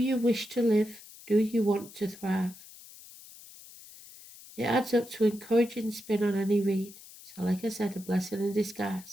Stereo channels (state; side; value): noise; left; hiss, 19 dB below the sound